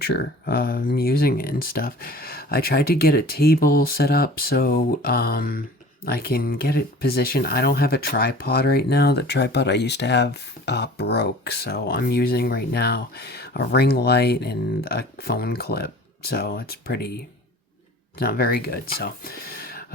using it and stuff. I tried to get a table set up so I can get it positioned. I don't have a tripod right now. The tripod I used to have broke, so I'm using right now a ring light and a phone clip. So it's not very good. So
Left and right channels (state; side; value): normal; both; correlation 0.44